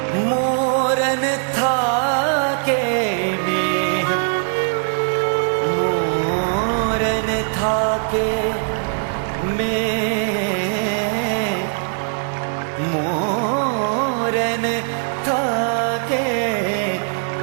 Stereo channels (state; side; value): silent; left; 65 dB below the other